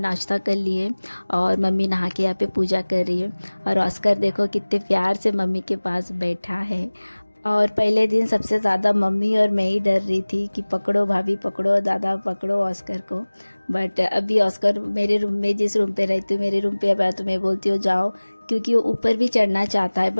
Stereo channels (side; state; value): both; inverted; correlation -1.00